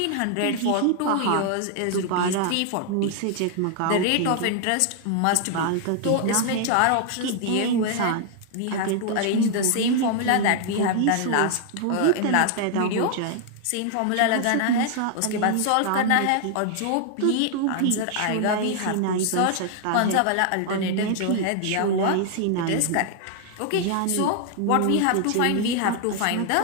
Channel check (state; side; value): different; both; correlation 0.00